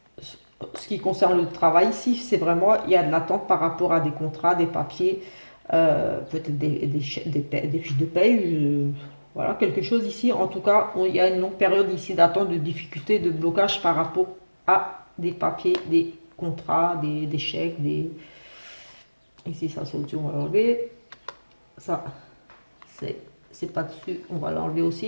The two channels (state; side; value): inverted; both; correlation -1.00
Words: ce qui concerne le travail ici, c'est vraiment, il y a de l'attente par rapport à des contrats, des papiers, peut-être des fiches de paye, voilà, quelque chose ici. En tout cas, il y a une longue période ici d'attente, de difficulté, de blocage par rapport à des papiers, des contrats, des chèques, des... Ici, ça, c'est au-dessus, on va l'enlever. Ça, c'est pas dessus, on va l'enlever